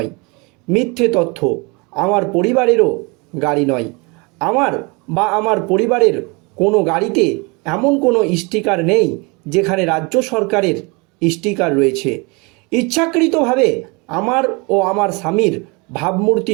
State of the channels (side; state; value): left; quieter; 28.6 dB